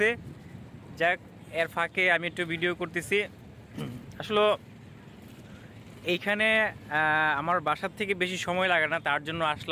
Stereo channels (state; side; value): identical; both; correlation 1.00